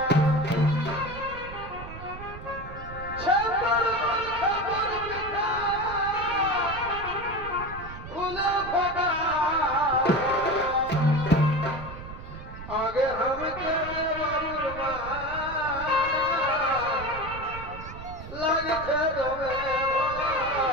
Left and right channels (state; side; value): noise; right; rumble, 12 dB below the sound